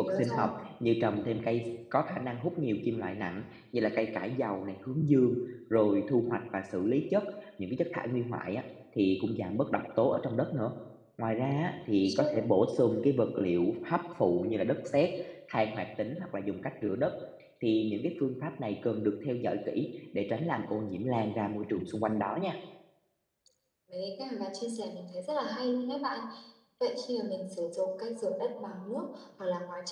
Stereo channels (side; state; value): both; identical; correlation 1.00